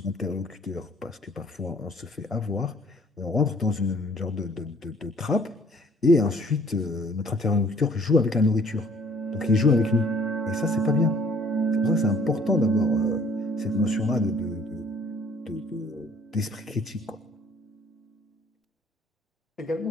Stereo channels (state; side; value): normal; both; correlation 0.58